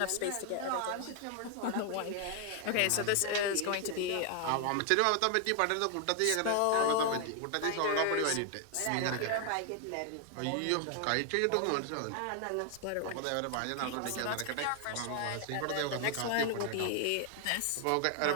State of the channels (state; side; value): different; both; correlation 0.00